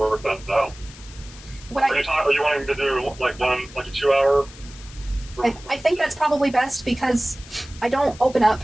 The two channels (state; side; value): noise; left; hiss, 19 dB below the sound